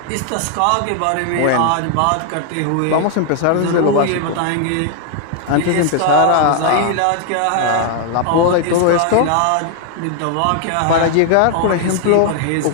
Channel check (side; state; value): both; different; correlation 0.00